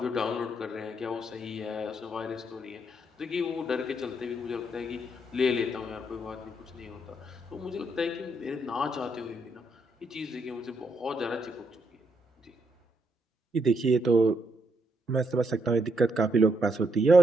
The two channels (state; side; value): normal; both; correlation 0.76